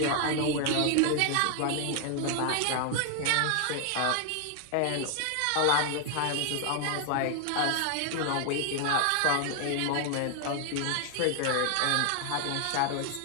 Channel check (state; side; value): different; both; correlation 0.00